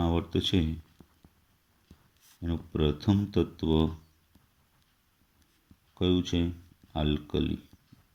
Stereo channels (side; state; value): both; identical; correlation 1.00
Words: છે એનું પ્રથમ તત્વ કયું છે? આલ્કલી